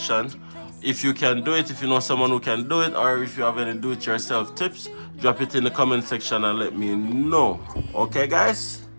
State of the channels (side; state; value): both; inverted; correlation -1.00